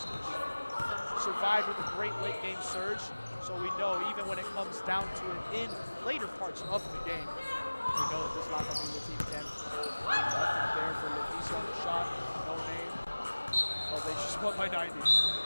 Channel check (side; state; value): both; inverted; correlation -1.00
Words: Survived with a great late-game surge. So we know even when it comes down to it in later parts of the game, we know that this La Familia team can hold through. Nothing there for Leticia on the shot. No name. Well, they just won by 90.